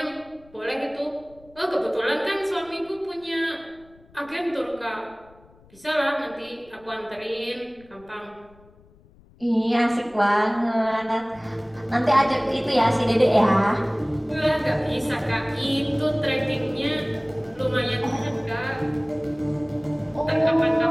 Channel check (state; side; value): noise; left; rumble, 27 dB below the sound